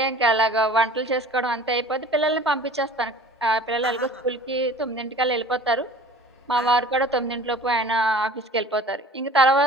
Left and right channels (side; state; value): both; normal; correlation 0.45